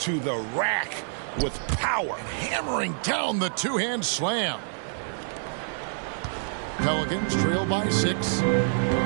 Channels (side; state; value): left; silent; digital silence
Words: to the rack with power. Hammering down the two-hand slam. Pelicans trail by 6.